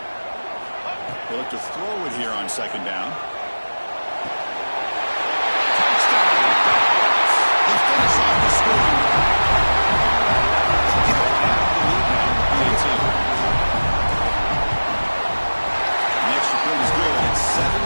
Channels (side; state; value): both; inverted; correlation -1.00